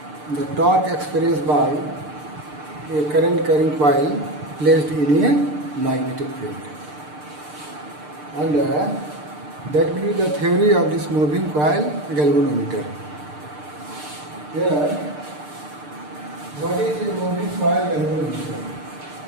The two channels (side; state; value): left; late; 6.7 ms